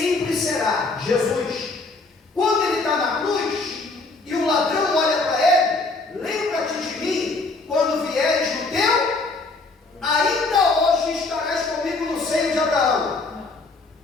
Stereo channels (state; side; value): quieter; right; 3.6 dB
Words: será, Jesus. Quando ele está na cruz e o ladrão olha para ele, lembra-te de mim quando vieres no teu, ainda hoje estarás comigo no seio de Abraão,